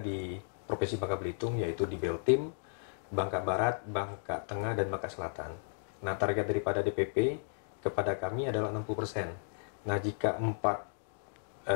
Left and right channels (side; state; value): right; silent; digital silence